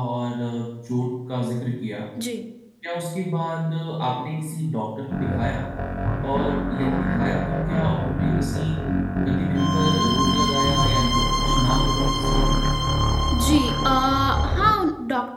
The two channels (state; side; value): identical; both; correlation 1.00